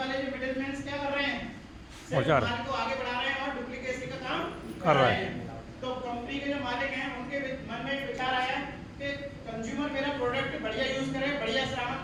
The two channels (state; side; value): identical; both; correlation 1.00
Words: जो मिडिलमैन क्या कर रहे हैं, सिर्फ माल को आगे बढ़ा रहे हैं और डुप्लीकेसी का काम कर रहे हैं। तो कंपनी के जो मालिक हैं उनके मन में विचार आया कि कंज्यूमर मेरा प्रोडक्ट बढ़िया यूज करे, बढ़िया सामान